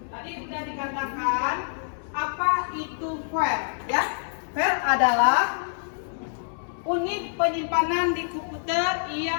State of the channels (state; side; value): silent; right; digital silence